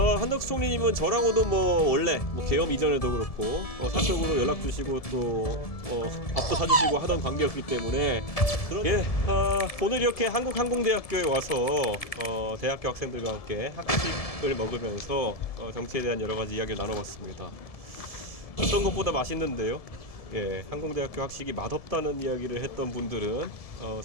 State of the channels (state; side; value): late; right; 1.7 ms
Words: 총리님은 저랑도 원래 계엄 이전에도 그렇고 사적으로 연락 주시고 또 밥도 사주시고 하던 관계였기 때문에 오늘 이렇게 한국항공대학교에 와서 대학교 학생들과 함께 학식을 먹으면서 정치에 대한 여러 가지 이야기를 나눠봤습니다. 어떤 것보다 맛있는데요. 항공대학교 학식이 맛없다는 이야기를 했던 분들은